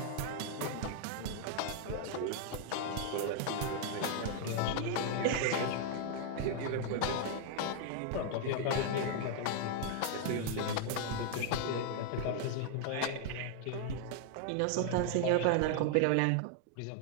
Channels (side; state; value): both; different; correlation 0.00